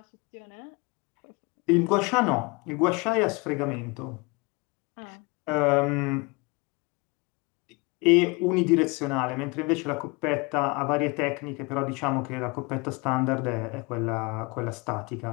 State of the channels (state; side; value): quieter; right; 28.1 dB